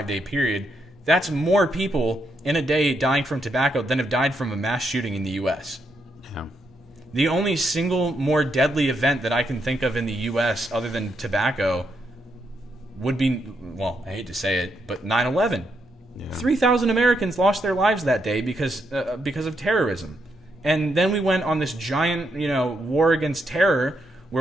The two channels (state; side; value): normal; both; correlation 0.79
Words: period. That's more people in a day dying from tobacco than have died from a mass shooting in the U.S. Yeah. The only single more deadly event that I can think of in the U.S. other than tobacco would be, well, I hate to say it, but 9/11. Yeah. 3,000 Americans lost their lives that day because of terrorism. And then we went on this giant, war against terror